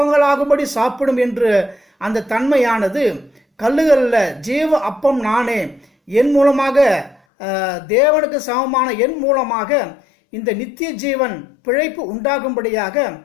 சாப்பிடும் என்று அந்த தன்மையானது கல்லுகளில் ஜீவ அப்பம் நானே, என் மூலமாக தேவனுக்கு சமமான என் மூலமாக இந்த நித்திய ஜீவன் பிழைப்பு உண்டாகும்படியாக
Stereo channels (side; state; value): right; drops out; at 7.2 s